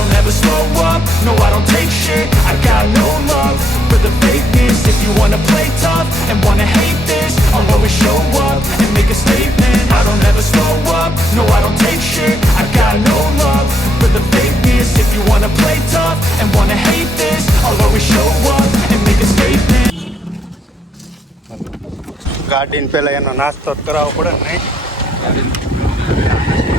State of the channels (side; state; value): both; normal; correlation 0.76